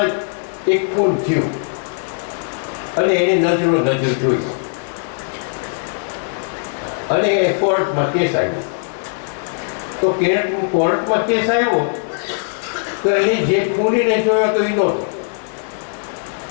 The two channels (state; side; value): silent; right; 66 dB below the other